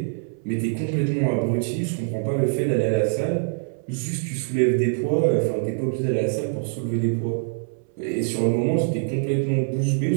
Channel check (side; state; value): left; silent; 63 dB below the other